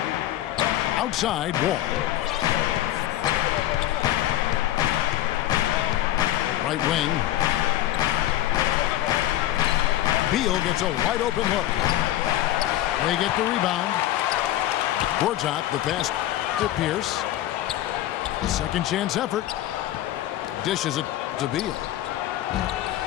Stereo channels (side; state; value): right; quieter; 13.8 dB